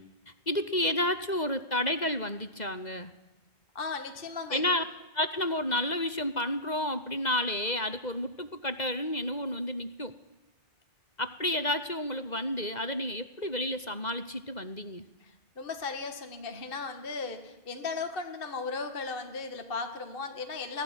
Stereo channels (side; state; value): right; late; 2.0 ms